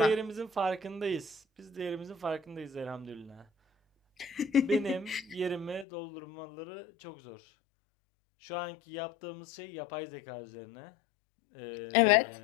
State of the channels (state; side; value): drops out; right; at 5.9 s